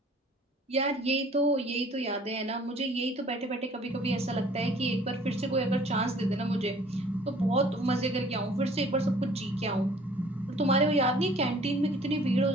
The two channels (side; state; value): both; normal; correlation 0.54